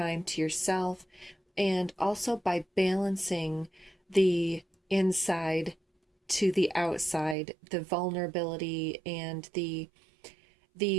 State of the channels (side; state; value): left; drops out; at 7.4 s